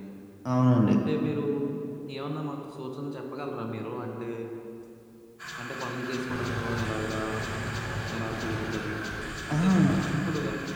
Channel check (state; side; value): identical; both; correlation 1.00